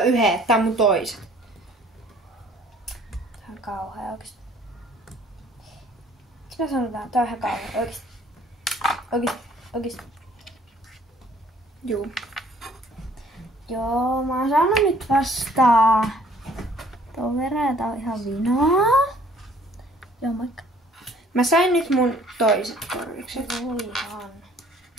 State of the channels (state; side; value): normal; both; correlation 0.57